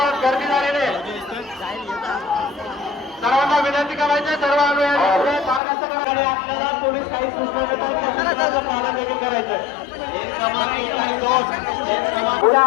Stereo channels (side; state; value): right; drops out; at 5.6 s